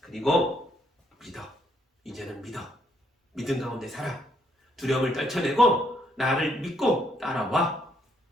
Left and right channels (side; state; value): both; normal; correlation 0.72